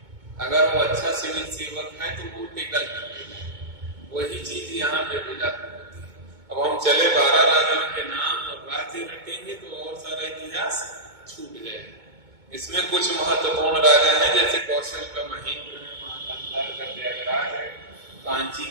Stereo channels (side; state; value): left; late; 2.2 ms